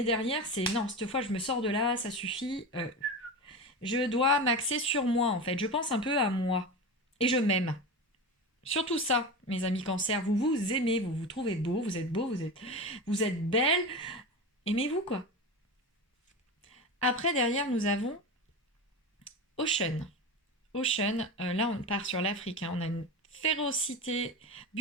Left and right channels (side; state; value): both; normal; correlation 0.25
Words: derrière, c'est non, cette fois, je me sors de là, ça suffit. Je dois m'axer sur moi, en fait. Je pense un peu à moi. Et je m'aime. Surtout ça, mes amis cancer, vous vous aimez, vous vous trouvez beau, vous êtes belle. Aimez-vous, quoi. Après, derrière, nous avons Ocean. Ocean, là, on part sur l'Afrique. Hein. On a une férocité.